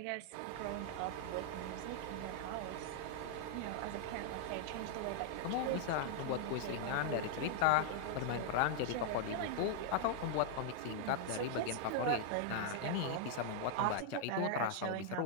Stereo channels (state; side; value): different; both; correlation 0.00